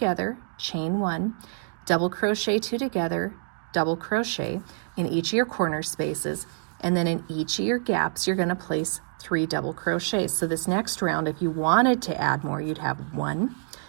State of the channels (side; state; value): left; silent; digital silence